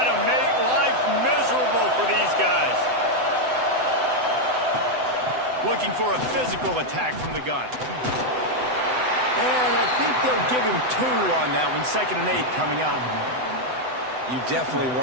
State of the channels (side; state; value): left; late; 7.9 ms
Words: to make life miserable for these guys. Looking for a physical attack from the gun. And I think they'll give him 2 on that one. 2nd and 8 coming up. You definitely